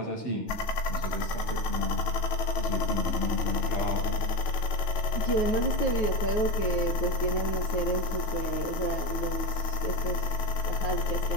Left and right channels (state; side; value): late; right; 9.4 ms